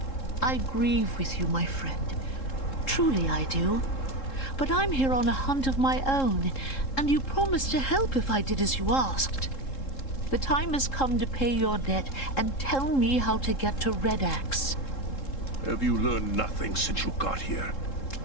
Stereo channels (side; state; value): right; late; 3.7 ms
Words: I grieve with you, my friend. Truly I do. But I'm here on a hunt of my own, and you promised to help if I did as you asked. The time has come to pay your debt and tell me how to get to Red Axe. Have you learned nothing since you got here?